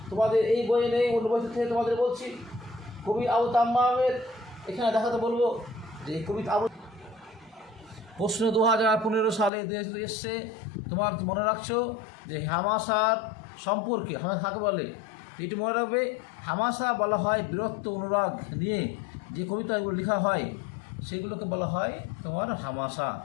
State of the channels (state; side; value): drops out; right; at 9.5 s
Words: তোমাদের এই বই নেই, অন্য বই থেকে তোমাদের বলছি। কবি আবু তাম্মামের এখানে দেখাতে বলবো যে কবি আবু প্রশ্ন 2015 সালে এসছে, তোমার মনে রাখছো যে হামাসার সম্পর্কে কাকে বলে? এটি মনে রাখবে, হামাসা বলা হয় বীরত্ব অনুরাগ নিয়ে যে কবিতাগুলো লেখা হয় সেগুলোকে বলা হয় তোমার হামাসা।